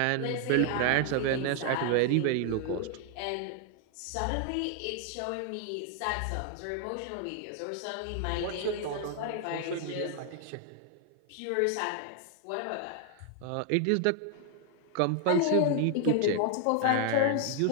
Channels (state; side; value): different; both; correlation 0.00